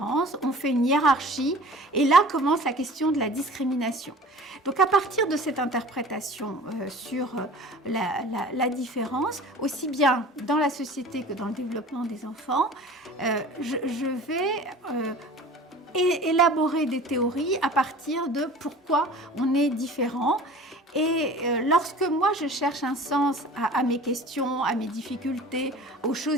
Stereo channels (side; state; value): both; normal; correlation 0.42